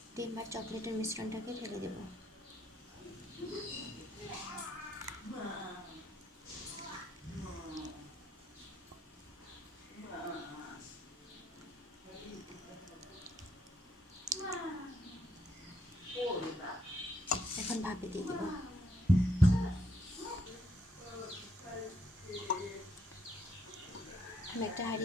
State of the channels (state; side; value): normal; both; correlation 0.73